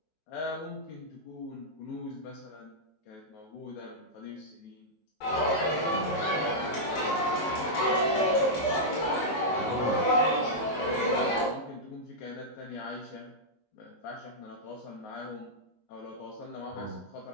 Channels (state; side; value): late; right; 19 ms